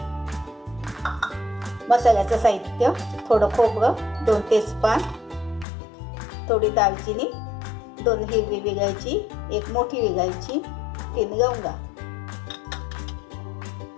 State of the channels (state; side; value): drops out; right; at 5.7 s